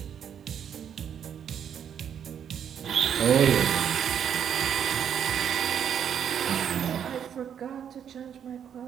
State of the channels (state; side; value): quieter; left; 8.6 dB